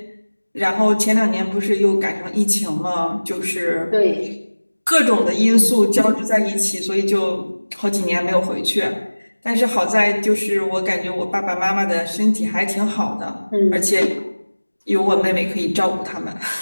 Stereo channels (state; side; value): inverted; both; correlation -1.00